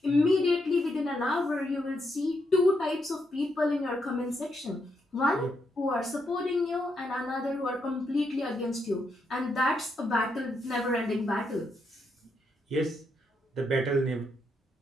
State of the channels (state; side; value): normal; both; correlation 0.80